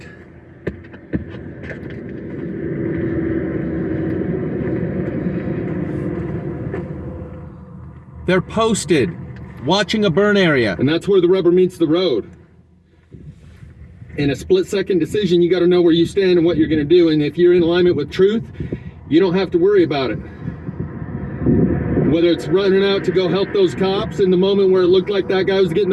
They're posted, watching a burn area. And that's where the rubber meets the road. In a split-second decision, you got to know where you stand and what you're going to do. And if you're in alignment with truth, you don't have to worry about it. Whether it's running out to go help those cops in the moment where it looked like that guy was getting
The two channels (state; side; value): identical; both; correlation 1.00